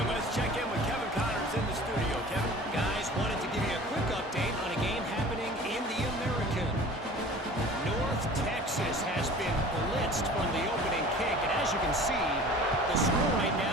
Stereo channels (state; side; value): normal; both; correlation 0.43